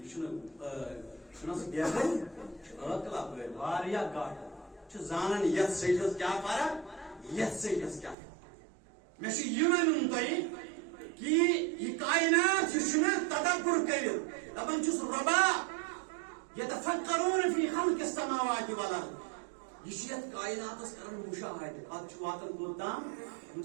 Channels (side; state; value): left; drops out; at 8.2 s